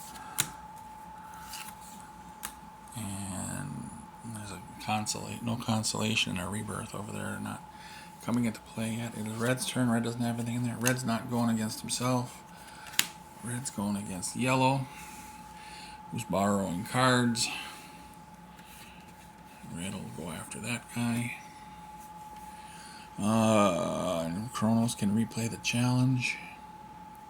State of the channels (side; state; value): both; identical; correlation 1.00